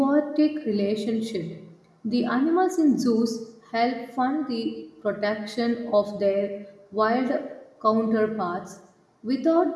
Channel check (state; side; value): identical; both; correlation 1.00